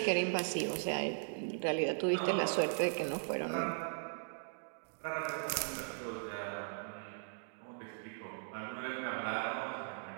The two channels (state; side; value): silent; left; digital silence